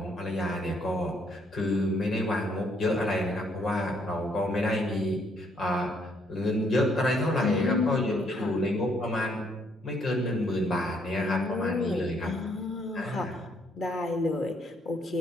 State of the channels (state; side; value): normal; both; correlation 0.69